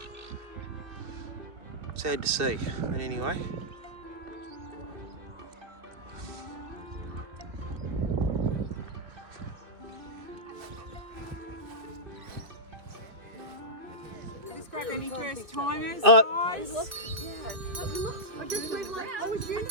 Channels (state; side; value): late; left; 2.5 ms